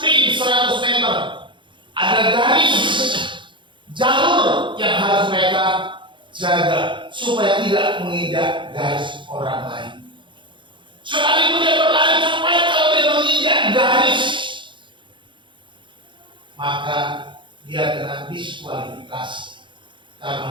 100 meter. Ada garis jalur yang harus mereka jaga supaya tidak menginjak garis orang lain. Sekalipun dia berlari cepat, kalau dia menginjak garis, maka dia kena diskualifikasi karena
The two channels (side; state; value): left; late; 0.23 ms